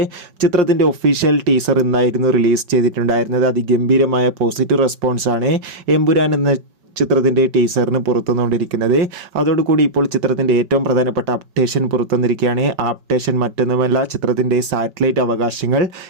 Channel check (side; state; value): left; late; 5.3 ms